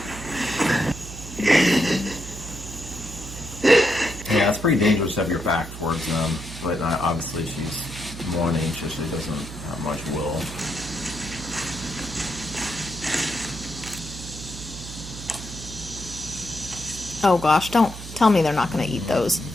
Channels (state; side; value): noise; right; hum, 11 dB below the sound